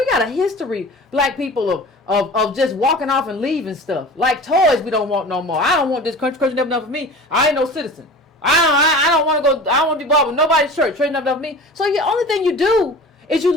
history, black people, of just walking off and leaving stuff. Like toys we don't want no more. I don't want this country never enough for me. I ain't no citizen. I don't want to go. I don't want to be involved with nobody's church. Church enough for me. So the only thing you do is you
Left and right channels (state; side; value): normal; both; correlation 0.38